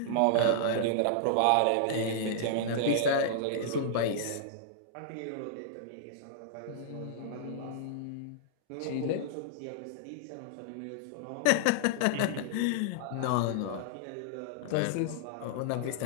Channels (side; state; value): both; different; correlation -0.01